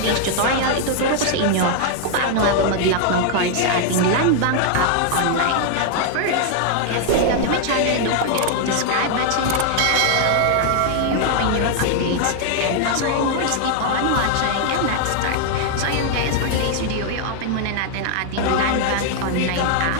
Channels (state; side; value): different; both; correlation 0.00